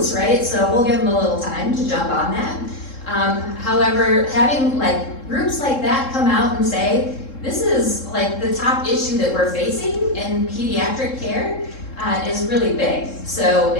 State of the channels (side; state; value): right; late; 3.7 ms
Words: right? So we'll give them a little time to jump on that. However, having groups like that come out and say, this is the top issue that we're facing in pediatric care is really big. So